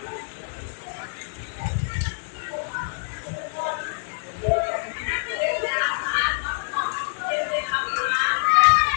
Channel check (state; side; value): silent; right; digital silence